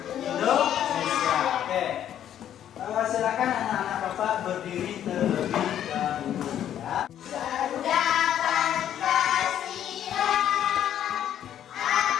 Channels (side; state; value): right; quieter; 10.5 dB